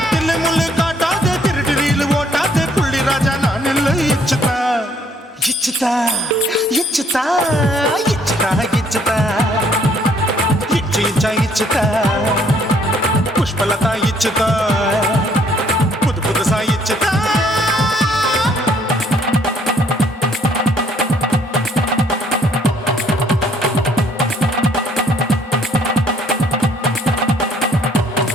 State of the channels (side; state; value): both; normal; correlation 0.64